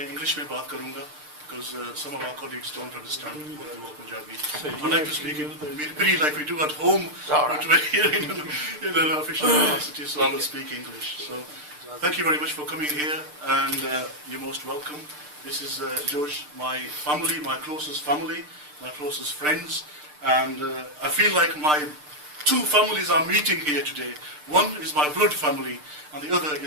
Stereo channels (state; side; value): late; left; 6.7 ms